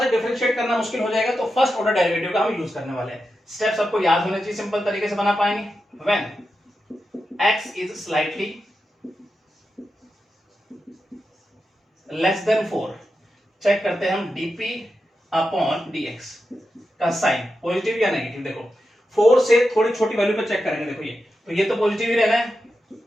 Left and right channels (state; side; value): normal; both; correlation 0.89